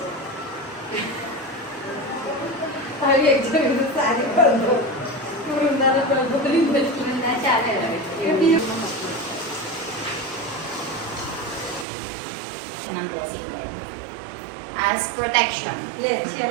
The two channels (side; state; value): left; drops out; at 11.9 s